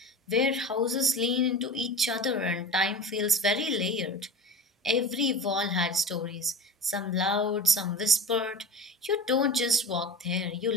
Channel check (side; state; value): both; normal; correlation 0.33